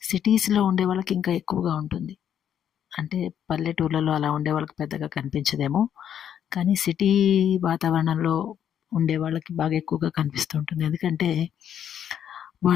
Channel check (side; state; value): right; quieter; 9.4 dB